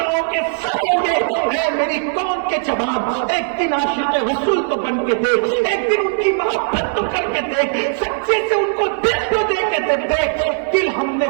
کے سر ہوں گے. اے میری قوم کے جوان، ایک دن عاشق رسول تو بن کے دیکھ، ایک دن ان کی محبت تو کر کے دیکھ، سچے سے ان کو دل تو دے کے دیکھ. دل ہم نے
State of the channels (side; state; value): left; silent; 67 dB below the other